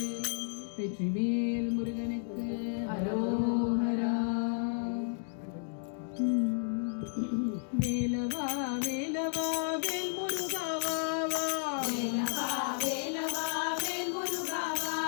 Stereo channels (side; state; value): right; silent; digital silence